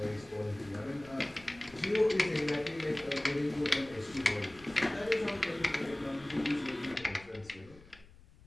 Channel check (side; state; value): left; noise; rumble, 23 dB below the sound